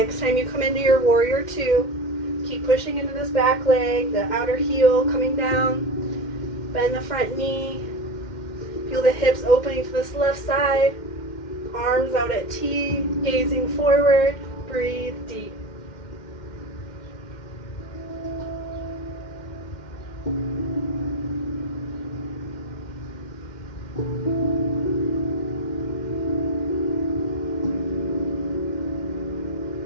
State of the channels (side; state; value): right; late; 2.1 ms